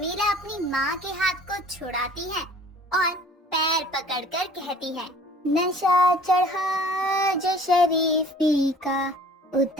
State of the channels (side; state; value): both; normal; correlation 0.50